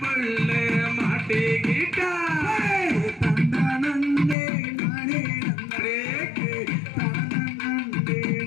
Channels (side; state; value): right; drops out; at 4.4 s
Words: புள்ள மாட்டிக்கிட்டா தந்தனந்தே நானே நந்தரேக்கு தனனந்தே